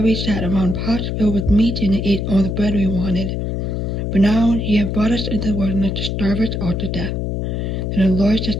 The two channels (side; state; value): left; noise; hum, 2 dB below the sound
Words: we sat around pots filled with meat and ate all the bread we wanted. But now ye have brought us into the wilderness to starve us all to death. Then the Lord